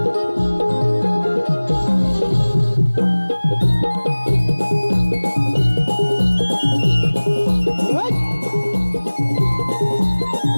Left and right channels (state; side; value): inverted; both; correlation -1.00